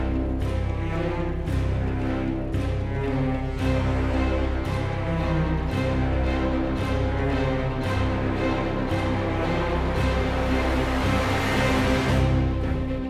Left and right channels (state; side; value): identical; both; correlation 1.00